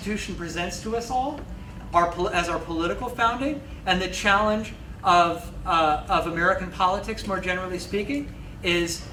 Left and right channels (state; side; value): identical; both; correlation 1.00